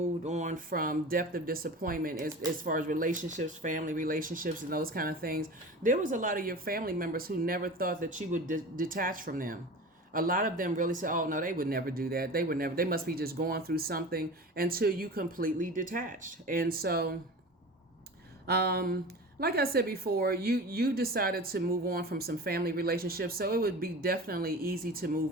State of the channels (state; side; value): normal; both; correlation 0.34